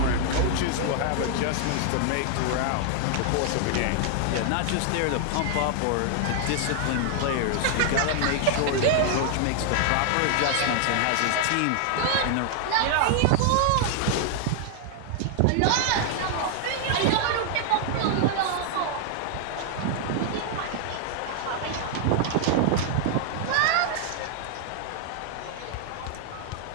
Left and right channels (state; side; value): different; both; correlation 0.00